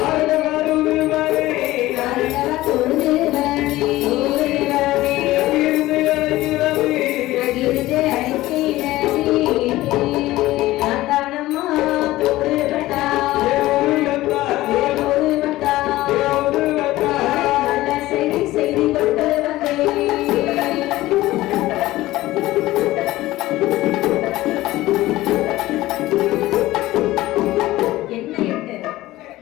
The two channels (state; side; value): quieter; right; 17.0 dB